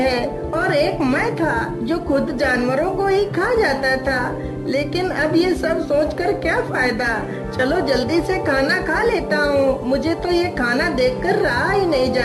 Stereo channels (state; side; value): identical; both; correlation 1.00